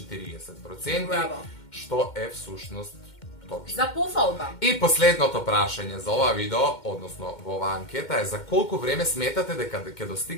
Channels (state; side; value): late; right; 2.1 ms